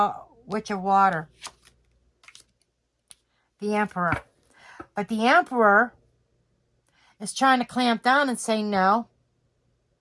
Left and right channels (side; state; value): both; identical; correlation 1.00